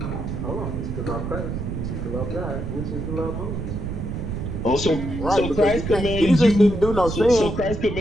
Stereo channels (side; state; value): right; noise; rumble, 4 dB below the sound